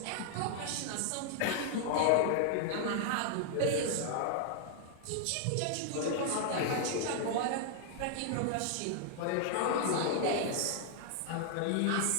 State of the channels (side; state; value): both; different; correlation 0.00